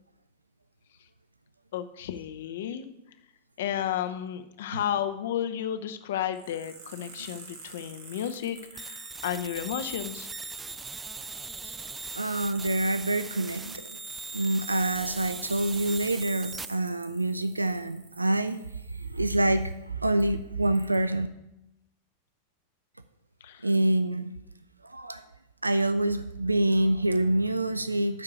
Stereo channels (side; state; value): both; inverted; correlation -0.78